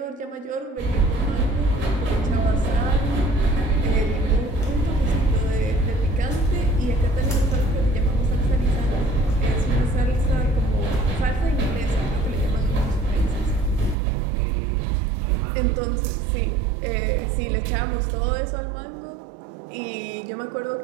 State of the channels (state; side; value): drops out; left; at 14.0 s